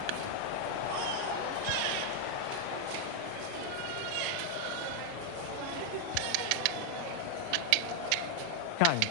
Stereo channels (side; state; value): both; different; correlation 0.00